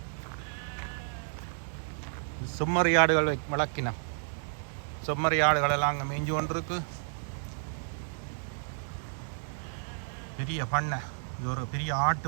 செம்மறி ஆடுகள் வளர்க்கினோம். செம்மறி ஆடுகள் எல்லாம் அங்கே மேய்ஞ்சு கொண்டிருக்கு. பெரிய பண்ணை, இது ஒரு பெரிய ஆட்டு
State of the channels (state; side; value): silent; left; digital silence